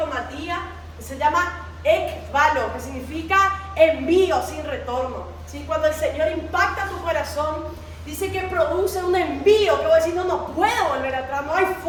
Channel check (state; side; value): identical; both; correlation 1.00